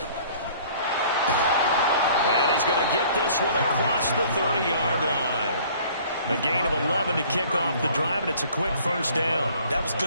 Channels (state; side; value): inverted; both; correlation -0.53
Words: And he's going to get this one across the 30-yard line. A gain of 11 to kick off the drive, and it's a quick 1st down. That was